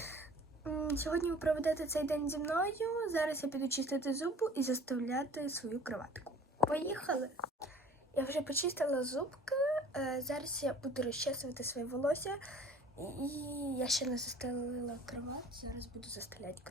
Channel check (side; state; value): both; normal; correlation 0.48